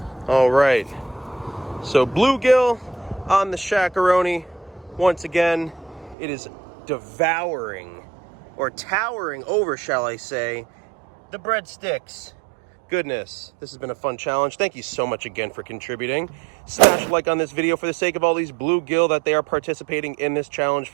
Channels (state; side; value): drops out; left; at 6.2 s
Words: All right. So bluegill on the Shaq-a-roni. Once again, it is devouring, or towering over, shall I say, the breadsticks. Goodness, this has been a fun challenge. Thank you so much again for contributing. Smash a like on this video for the sake of all these bluegill that they are participating in this challenge